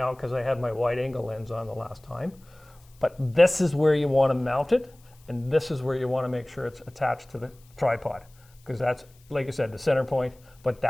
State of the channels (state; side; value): noise; left; hiss, 30 dB below the sound